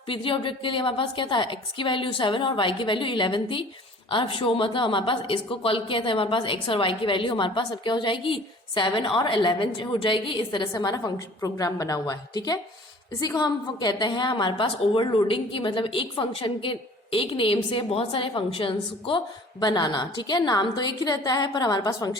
क्या था, x की वैल्यू 7 और y की वैल्यू 11 थी। अब शो मतलब हमारे पास इसको कॉल किया था, हमारे पास x और y की वैल्यू हमारे पास अब क्या हो जाएगी, 7 और 11 हो जाएगी। इस तरह से हमारा फंक्शन प्रोग्राम बना हुआ है। ठीक है, इसी को हम कहते हैं हमारे पास ओवरलोडिंग की, मतलब एक फंक्शन के एक नेम से बहुत सारे फंक्शंस को बनाना। ठीक है, नाम तो एक ही रहता है पर हमारे पास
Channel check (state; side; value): normal; both; correlation 0.48